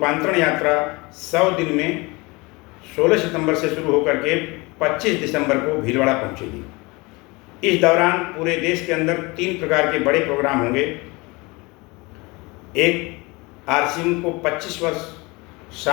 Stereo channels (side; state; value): right; quieter; 25.2 dB